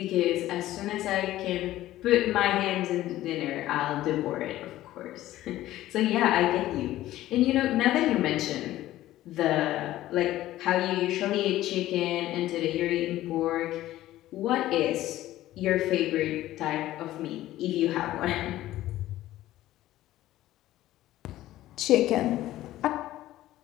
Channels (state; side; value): quieter; right; 14.8 dB